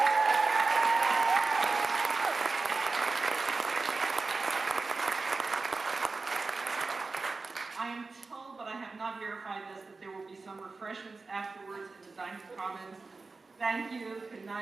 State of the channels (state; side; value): quieter; left; 3.9 dB